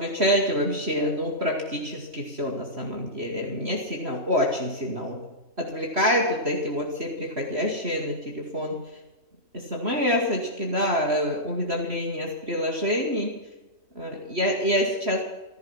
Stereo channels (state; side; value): late; left; 3.1 ms